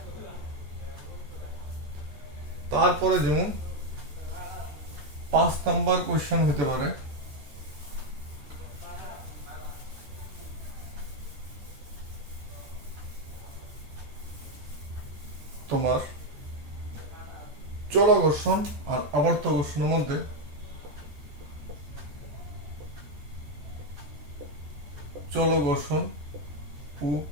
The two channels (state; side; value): late; left; 14 ms